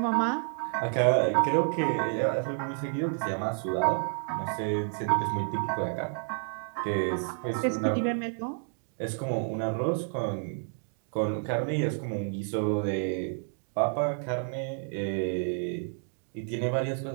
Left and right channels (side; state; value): left; silent; 58 dB below the other